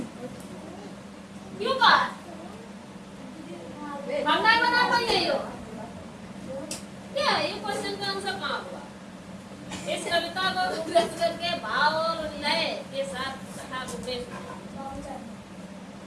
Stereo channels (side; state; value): both; identical; correlation 1.00